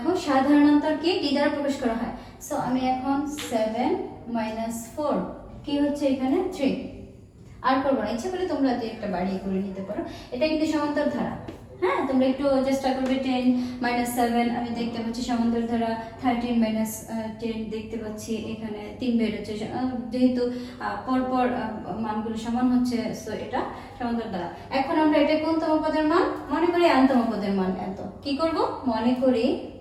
সাধারণতর কি ডি দ্বারা প্রকাশ করা হয়। সো আমি এখন 7 মাইনাস 4 কি হচ্ছে এখানে 3। আর করবো না, ইচ্ছা করলে তোমরা যে একটা বাড়িয়ে করে নিতে পারো। এটা কিন্তু সমান্তর ধারা। হ্যাঁ, তোমরা একটু চেষ্টা করবে। 10 মাইনাস 7 আমি দেখতে পাচ্ছি সমান্তর ধারা। 13 মাইনাস 10 দেখতে পাচ্ছি এখানে 3 বের হচ্ছে, যেহেতু পরপর মানগুলো সমান হচ্ছে, সো এটা সমান্তর ধারা। এখন আমরা এটা কোনতম পদের মান মনে করি? nতম পদের মান এত। কি করব? মনে করি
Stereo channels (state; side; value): identical; both; correlation 1.00